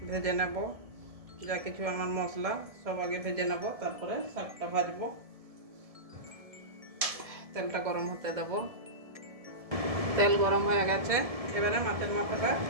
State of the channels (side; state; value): left; late; 1.7 ms